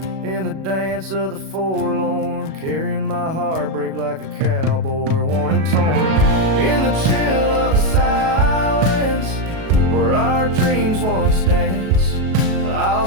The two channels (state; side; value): late; left; 37 ms